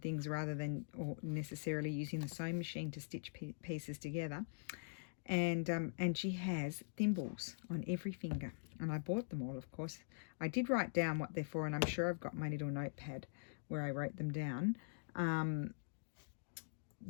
things rather than necessarily using the sewing machine to stitch pieces together. And she has thimbles on every finger, and I bought them all, of course. I did write down what they're for, and I'm sure I've got my little notepad where I wrote them down.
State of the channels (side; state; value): right; silent; digital silence